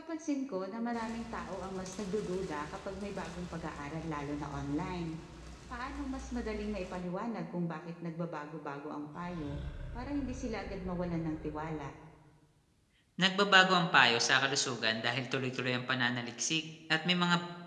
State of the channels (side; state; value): both; identical; correlation 1.00